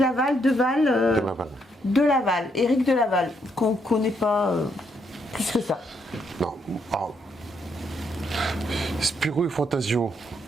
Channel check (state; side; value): normal; both; correlation 0.75